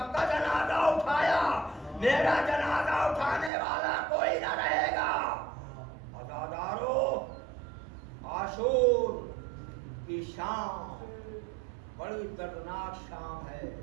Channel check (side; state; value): left; drops out; at 3.5 s